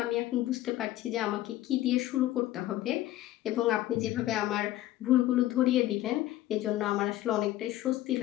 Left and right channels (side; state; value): right; quieter; 14.8 dB